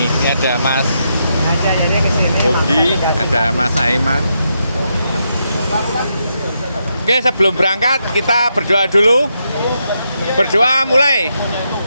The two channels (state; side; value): inverted; both; correlation -0.82